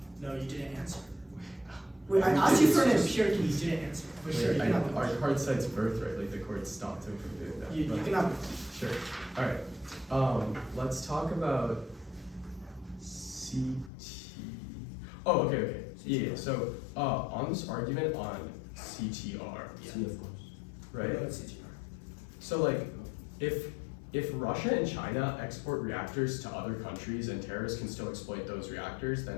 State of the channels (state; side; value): drops out; right; at 13.9 s